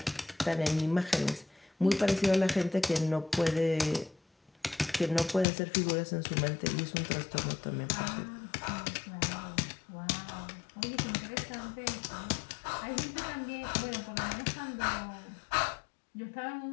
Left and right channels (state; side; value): drops out; right; at 5.5 s